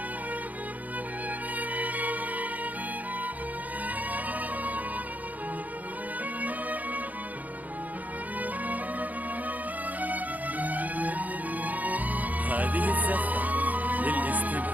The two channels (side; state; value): left; late; 0.078 ms